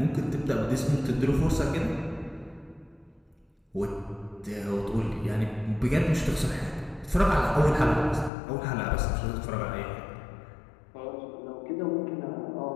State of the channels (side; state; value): right; drops out; at 8.3 s